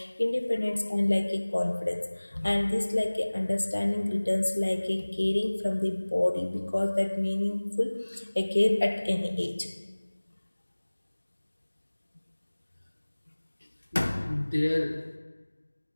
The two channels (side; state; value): both; inverted; correlation -1.00